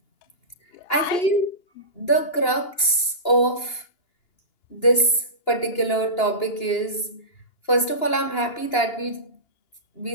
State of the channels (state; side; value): late; right; 2.9 ms